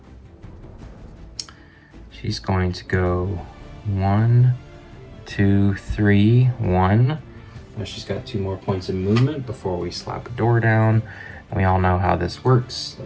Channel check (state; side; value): identical; both; correlation 1.00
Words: She's going to go 1, 2, 3, 1. Now she's got 2 more points of movement before we slap a door down. We all know how this works.